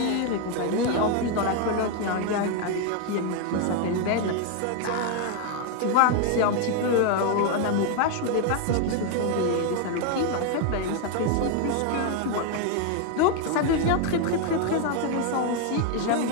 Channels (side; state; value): both; different; correlation 0.01